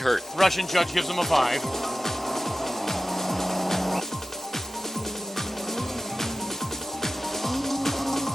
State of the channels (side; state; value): both; normal; correlation 0.94